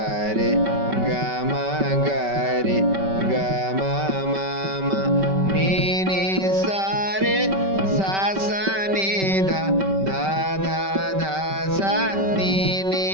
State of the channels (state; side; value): late; left; 5.2 ms